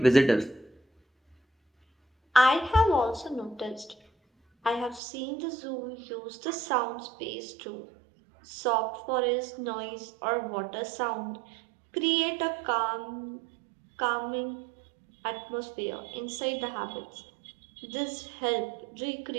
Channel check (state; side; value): drops out; left; at 5.0 s